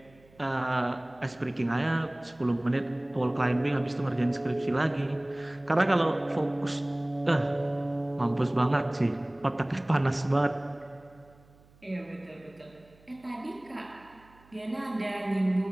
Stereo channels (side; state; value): right; noise; hum, 28 dB below the sound